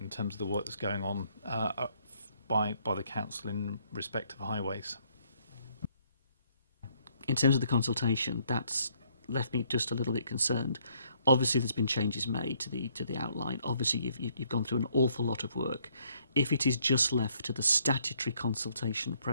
in terms of the work that's going on by the council in respect of highways. In terms of the consultation, that's left me just a little bit concerned. Obviously, there's been changes made to the outline. Obviously, you've gone through an awful lot of work. If it is just left to the statutory consultation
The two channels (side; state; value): both; inverted; correlation -0.68